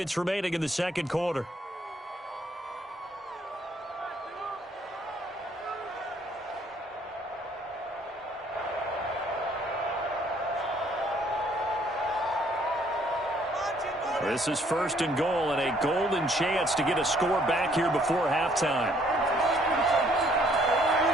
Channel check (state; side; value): normal; both; correlation 0.64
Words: remaining in the 2nd quarter. This is 1st and goal and a golden chance to get a score back here before halftime.